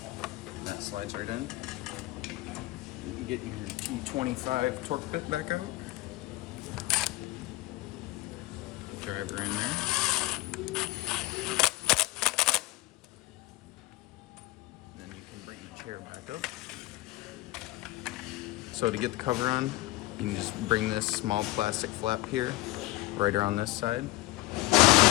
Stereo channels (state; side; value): quieter; right; 18.8 dB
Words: That slides right in. You can get your T25 torque bit back out. Driver in there. Then you can bring the chair back up. So to get the cover on, you can just bring this small plastic flap here, right around this side.